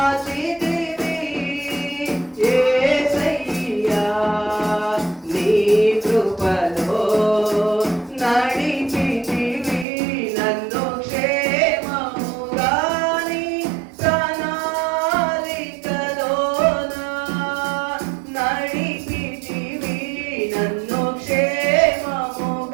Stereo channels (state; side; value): drops out; left; at 9.9 s